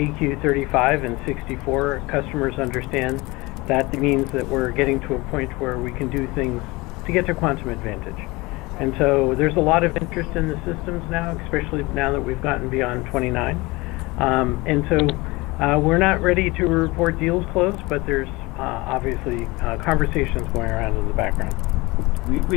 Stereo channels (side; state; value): right; quieter; 23.0 dB